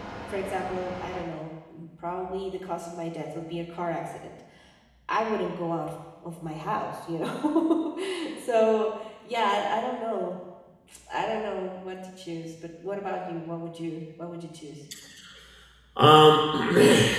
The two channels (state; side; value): identical; both; correlation 1.00